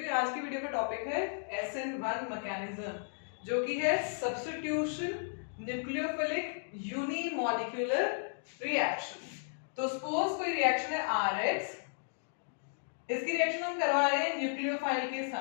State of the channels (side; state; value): right; silent; digital silence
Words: हूँ। आज की वीडियो का टॉपिक है SN1 मैकेनिज्म जो कि है सब्स्टिट्यूशन न्यूक्लियोफिलिक यूनिमॉलिक्यूलर रिएक्शन। तो सपोज कोई रिएक्शन है RX, इसकी रिएक्शन हम करवा रहे हैं न्यूक्लियोफाइल के